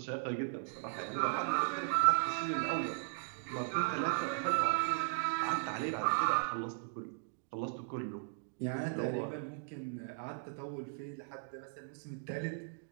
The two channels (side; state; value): left; silent; digital silence